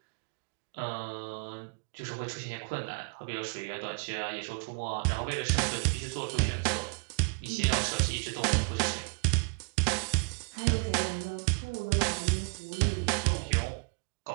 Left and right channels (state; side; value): quieter; left; 36.5 dB